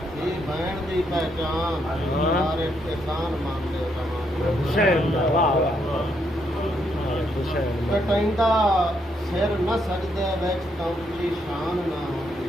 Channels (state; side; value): normal; both; correlation 0.75